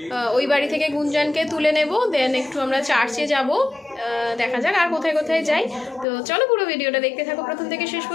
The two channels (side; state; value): right; drops out; at 6.1 s